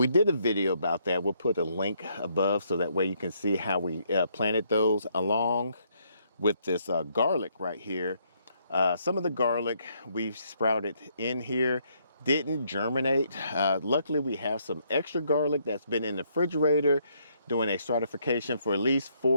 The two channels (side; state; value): both; inverted; correlation -0.71